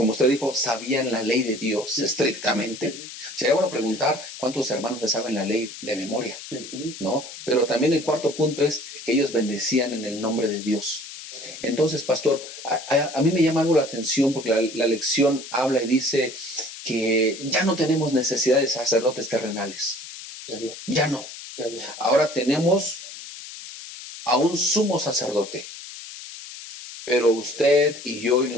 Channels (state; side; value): noise; left; hiss, 13 dB below the sound